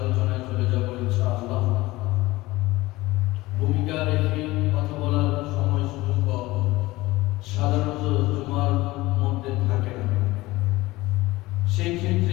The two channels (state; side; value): quieter; right; 19.4 dB